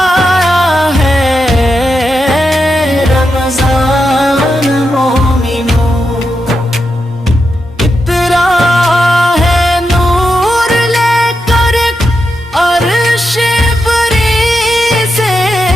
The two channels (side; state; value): both; normal; correlation 0.86